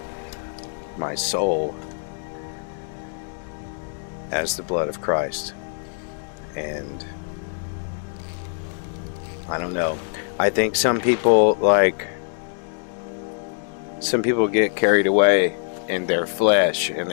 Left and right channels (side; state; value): right; silent; digital silence